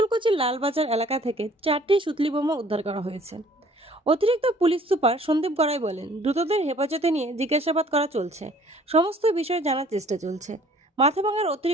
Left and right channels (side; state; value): both; normal; correlation 0.56